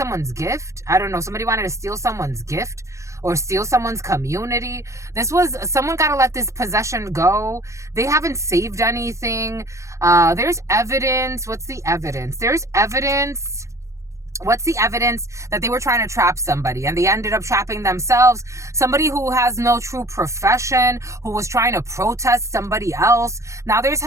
gift. I don't know, somebody wanted to steal someone's gift or steal someone's community. Someone got to let this possession go. They haven't saved anything. There's evidence. What's the evidence? There's evidence. What's the evidence that they were trying to trap somebody and they ended up trapping themselves? Somebody who has no true profession, who was trying to protest somebody else. Now there's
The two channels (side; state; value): left; late; 0.15 ms